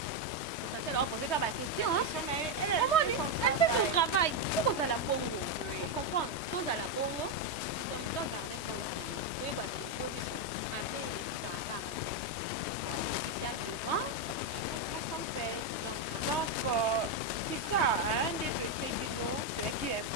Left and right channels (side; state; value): right; late; 3.2 ms